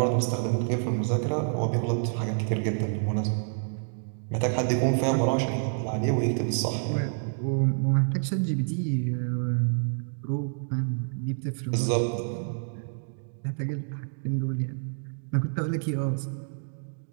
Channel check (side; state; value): left; silent; digital silence